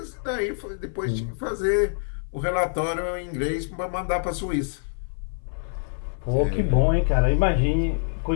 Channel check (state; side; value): silent; right; 57 dB below the other